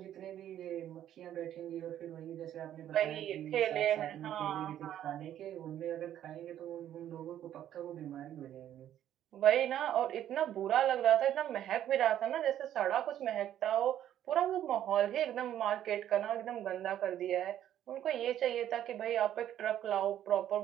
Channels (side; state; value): left; quieter; 11.3 dB